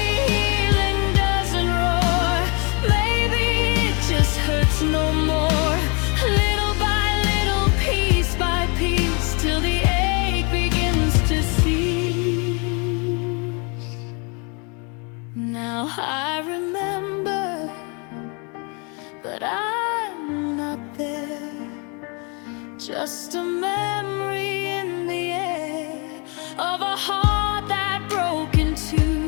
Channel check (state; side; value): quieter; right; 33.2 dB